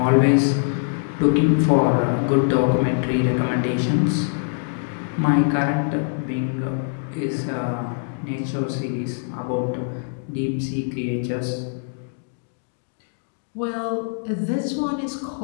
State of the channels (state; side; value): silent; right; digital silence